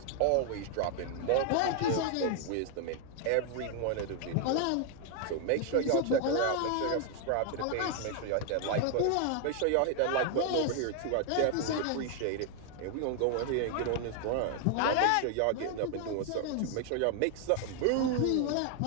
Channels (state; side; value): different; both; correlation 0.00